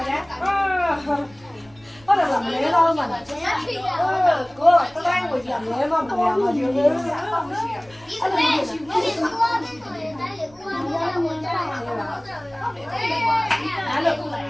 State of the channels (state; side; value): noise; right; rumble, 28 dB below the sound